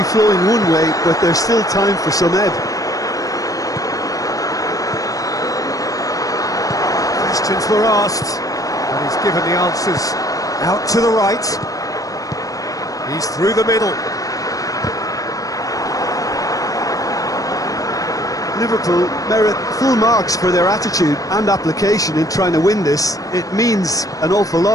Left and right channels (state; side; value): late; right; 0.17 ms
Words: flowing one way, but there's still time for some ebb. Questions were asked, and he's given the answers. Out to the right. He's through the middle. Liverpool merit full marks for their attitude and application in trying to win this. It means an awful